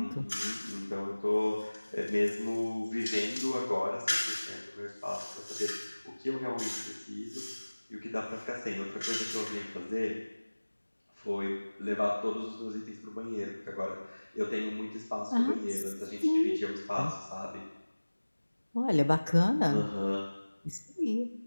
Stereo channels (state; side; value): inverted; both; correlation -1.00